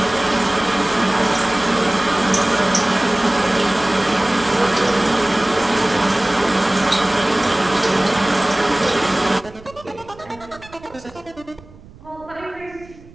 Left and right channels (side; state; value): right; noise; rumble, 22 dB below the sound